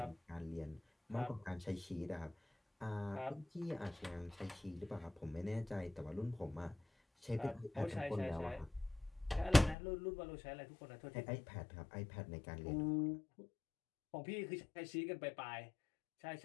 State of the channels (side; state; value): right; drops out; at 9.8 s